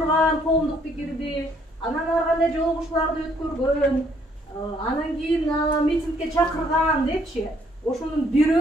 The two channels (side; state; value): both; normal; correlation 0.66